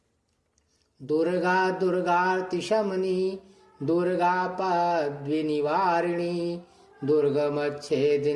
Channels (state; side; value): identical; both; correlation 1.00